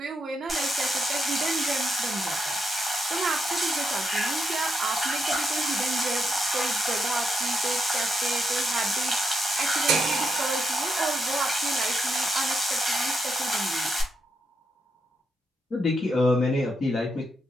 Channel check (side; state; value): both; normal; correlation 0.81